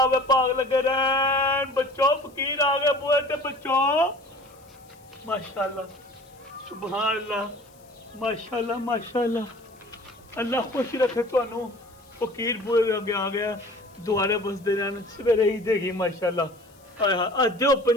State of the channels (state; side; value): noise; left; hiss, 29 dB below the sound